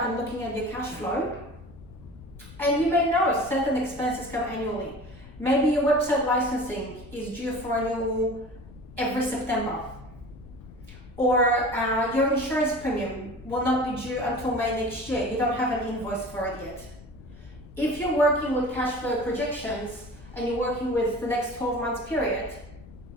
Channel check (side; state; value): left; noise; rumble, 18 dB below the sound